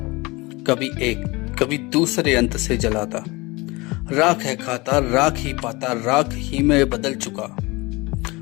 कभी एक कभी दूसरे अंत से जलाता। राख है खाता, राख ही पाता, राख ही में बदल चुका।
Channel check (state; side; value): quieter; right; 23.9 dB